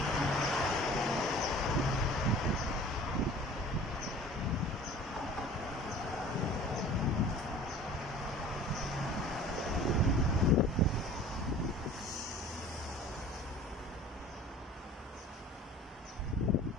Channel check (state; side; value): normal; both; correlation 0.45